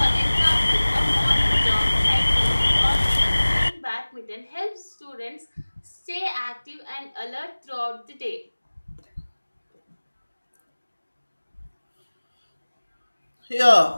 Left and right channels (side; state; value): both; inverted; correlation -1.00